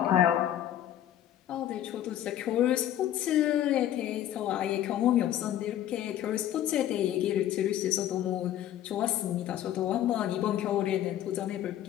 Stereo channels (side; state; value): right; quieter; 11.8 dB